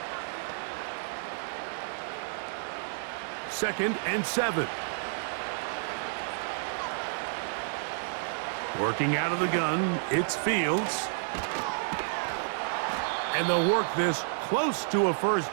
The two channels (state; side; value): silent; left; digital silence